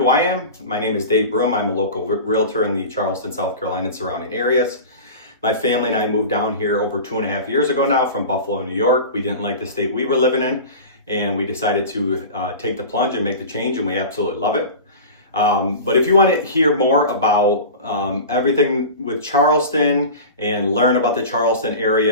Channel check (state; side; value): inverted; both; correlation -0.33